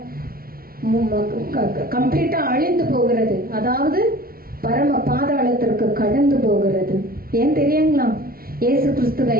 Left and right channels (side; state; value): left; late; 0.43 ms